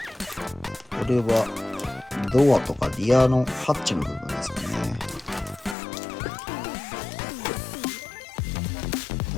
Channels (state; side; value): drops out; right; at 5.8 s